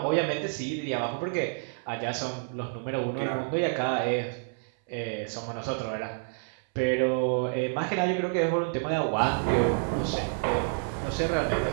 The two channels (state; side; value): silent; left; 59 dB below the other